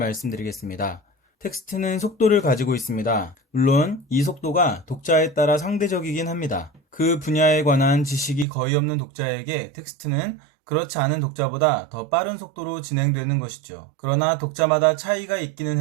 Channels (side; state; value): left; drops out; at 8.5 s